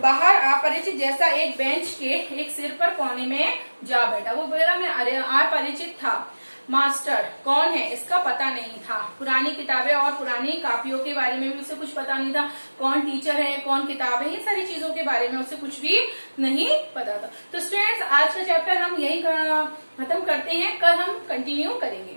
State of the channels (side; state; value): both; inverted; correlation -1.00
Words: अपरिचित जैसा एक बेंच के एक सिर पर कोने में जा बैठा। वो मेरा मैं अपरिचित था, मास्टर कौन है इसका पता नहीं था। पुरानी किताबें और पुरानी कापियों के बारे में भी उसे कुछ पता नहीं था। कौन टीचर है, कौन किताब है, इन सारी चीजों के बारे में उसे कुछ भी नहीं पता था। तो स्टूडेंट्स आज का चैप्टर हम यही खत्म करते हैं, कल हम कंटिन्यू